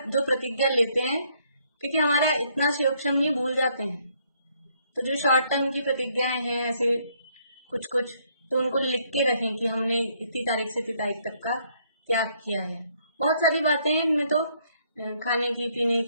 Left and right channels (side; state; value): both; inverted; correlation -0.69